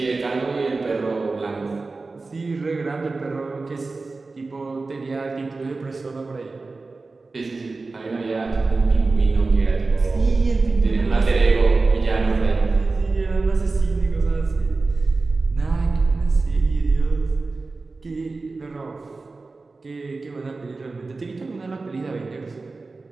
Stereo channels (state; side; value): quieter; left; 3.7 dB